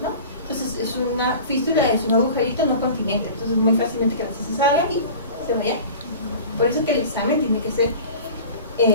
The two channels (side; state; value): both; inverted; correlation -0.39